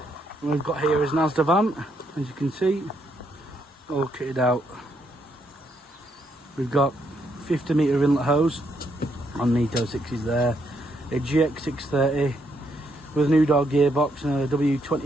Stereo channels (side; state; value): both; normal; correlation 0.75